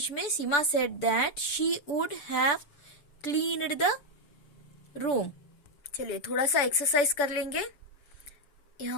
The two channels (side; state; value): right; late; 6.9 ms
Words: में Seema said that she would have cleaned the room. चलिए थोड़ा सा एक्सरसाइज कर लेंगे